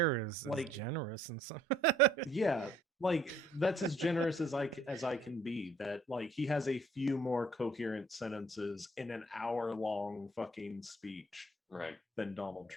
is Like- generous and some. Yeah, like that's as generous as I can be. That like he has a few more coherent sentences in an hour-long fucking speech, right, than Donald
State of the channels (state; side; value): normal; both; correlation 0.61